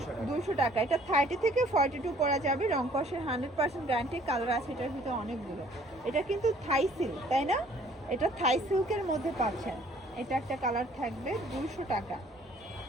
200 টাকা। এটা 30 থেকে 42 পরা যাবে, রং কষের 100% গ্যারান্টি। কালার আছে এটার ভিতরে অনেকগুলো। এটা কিন্তু থাই সিল্ক, তাই না? এটা থাই সিল্কের মধ্যে পাচ্ছেন। এটা একটা কালার থাকবে 200 টাকা।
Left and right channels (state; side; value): normal; both; correlation 0.58